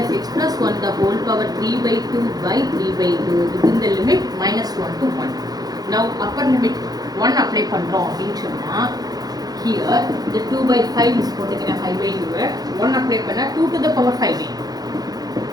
x plus 1 the whole power 3/2 by 3/2 within the limit -1 to 1. Now upper limit 1 apply பண்ணுறோம் அப்படின்னு சொன்னால் here the 2/5 is போட்டுக்கிறேன் 5/2 1 apply பண்ணால் 2 to the power 5/2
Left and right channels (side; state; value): left; late; 0.19 ms